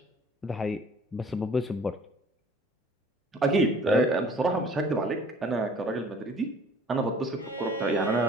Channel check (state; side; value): normal; both; correlation 0.52